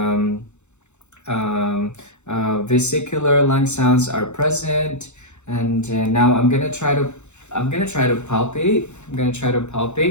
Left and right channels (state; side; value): late; right; 0.83 ms